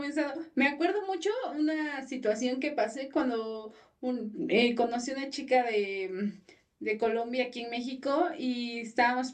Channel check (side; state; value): both; identical; correlation 1.00